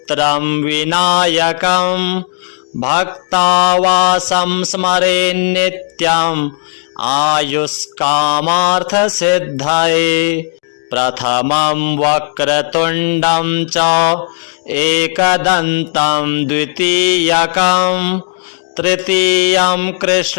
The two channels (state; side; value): silent; right; 71 dB below the other